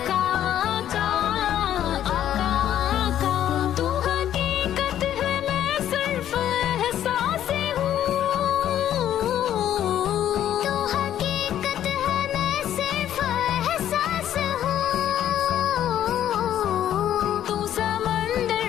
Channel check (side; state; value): right; quieter; 11.1 dB